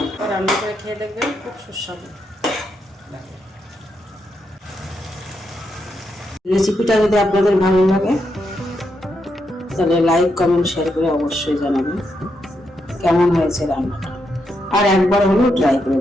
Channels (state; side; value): normal; both; correlation 0.82